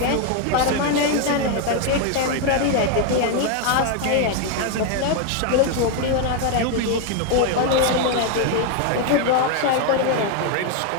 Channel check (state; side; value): different; both; correlation 0.01